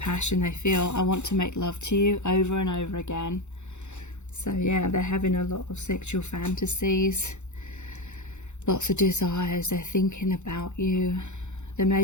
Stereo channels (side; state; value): right; late; 0.83 ms